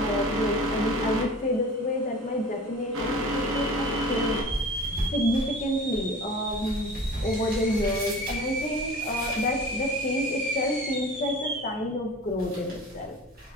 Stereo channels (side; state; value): both; normal; correlation 0.39